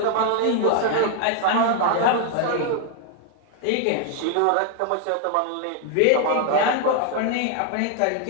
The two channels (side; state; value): both; different; correlation 0.00